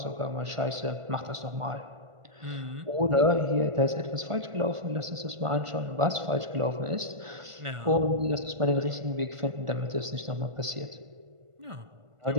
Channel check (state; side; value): late; left; 1.5 ms